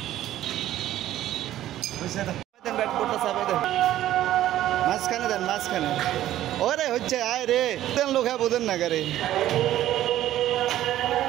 মাঝখানে দেন, মাঝখানে। ওরে হচ্ছে আয় রে, তেন লোক বোঝেন না গাড়ি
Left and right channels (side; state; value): left; quieter; 13.3 dB